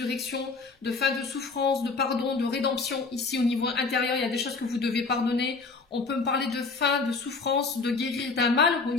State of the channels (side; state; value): right; quieter; 4.2 dB